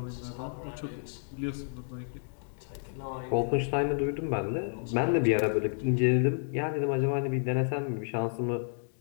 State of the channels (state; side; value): silent; right; digital silence